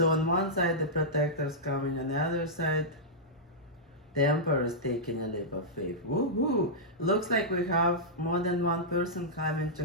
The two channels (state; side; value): normal; both; correlation -0.11